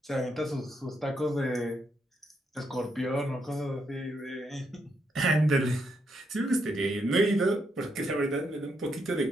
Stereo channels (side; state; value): both; normal; correlation 0.78